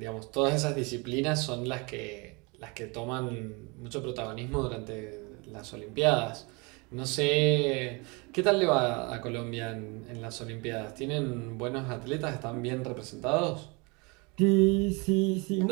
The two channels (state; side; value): quieter; left; 28.8 dB